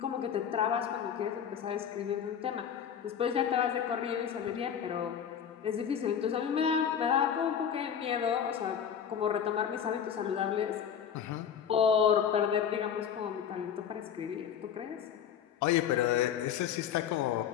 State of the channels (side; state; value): right; quieter; 8.4 dB